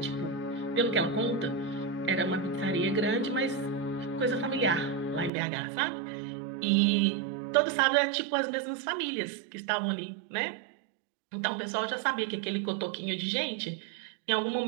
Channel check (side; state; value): left; drops out; at 5.3 s